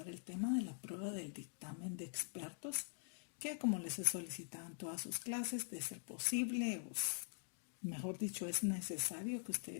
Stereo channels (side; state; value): right; silent; digital silence